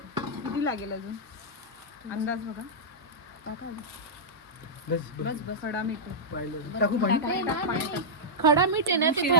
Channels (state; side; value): normal; both; correlation -0.11